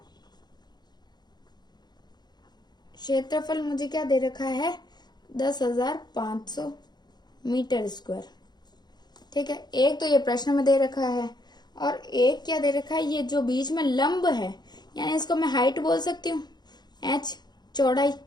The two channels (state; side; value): late; right; 0.20 ms